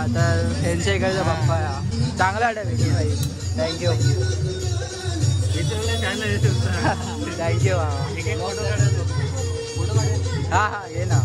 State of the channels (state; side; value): identical; both; correlation 1.00